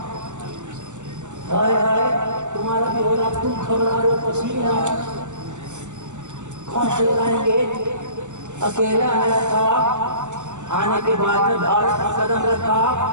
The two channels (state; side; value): late; left; 0.84 ms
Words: हाय हाय तुम्हारा भी हो रहा, तुम घबरा रहे हो, पसीना कौन से लाएंगे? अकेला आया था, आने के बाद में भारत का कदम रखा,